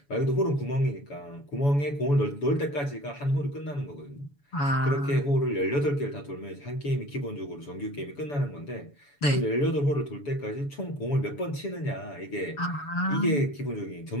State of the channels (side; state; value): right; late; 7.0 ms